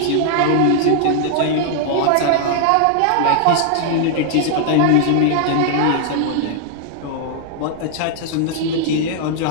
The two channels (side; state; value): both; different; correlation 0.00